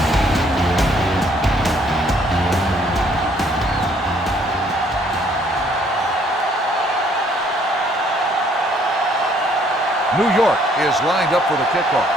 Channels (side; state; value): both; normal; correlation 0.64